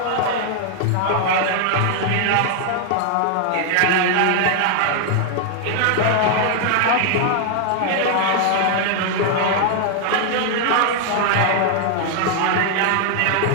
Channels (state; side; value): different; both; correlation 0.00